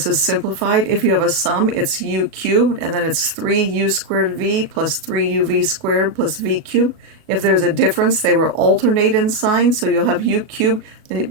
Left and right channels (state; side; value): late; left; 37 ms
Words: is simplified. If you have a sum, it's u cubed, and then it's 3u squared v plus 3uv squared plus v cubed. If there's a difference, they will alternate in sign, so you'll have u cubed, and